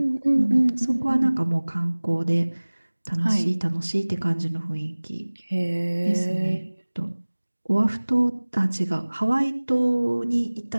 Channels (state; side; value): inverted; both; correlation -1.00